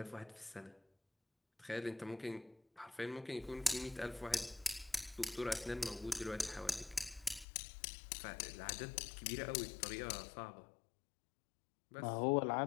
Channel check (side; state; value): right; drops out; at 7.5 s